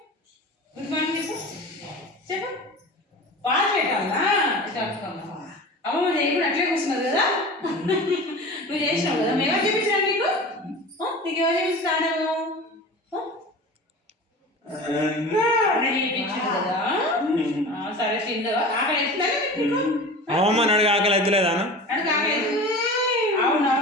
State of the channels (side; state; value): both; normal; correlation 0.35